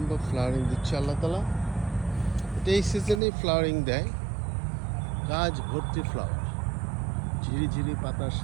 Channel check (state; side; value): drops out; left; at 3.2 s